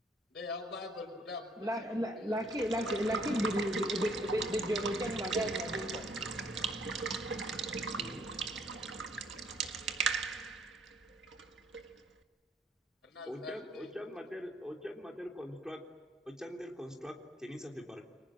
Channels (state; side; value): normal; both; correlation 0.65